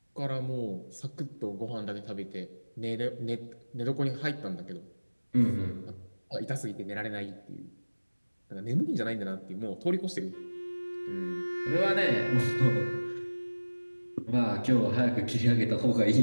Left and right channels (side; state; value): both; inverted; correlation -1.00